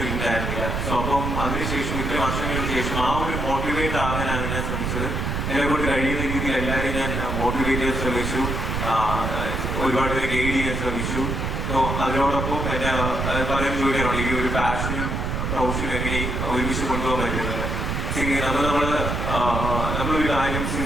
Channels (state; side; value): noise; right; rumble, 2 dB below the sound